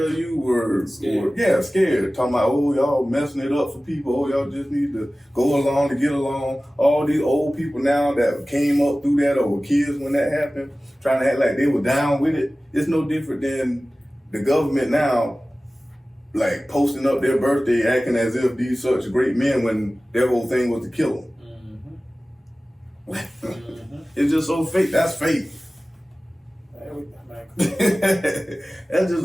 of you were scared. Talking about, oh, y'all messing it up for people. Oh, y'all just need to go along to get along. All these old people now that came up through that, or were kids when that happened, trying to act like they were down with it. It's no different than the government now, like, posting up their birthday, acting as if these such great men when their whole thing was to kill them. It's just so fake. That's fake. That's just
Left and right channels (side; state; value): both; normal; correlation 0.97